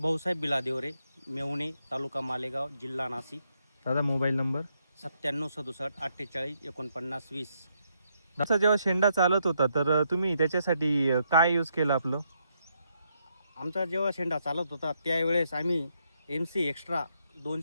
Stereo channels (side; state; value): both; inverted; correlation -0.77